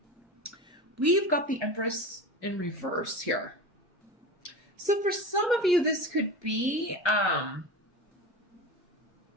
We've got the Empress in reverse here. So for some of you, this could be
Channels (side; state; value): both; normal; correlation 0.29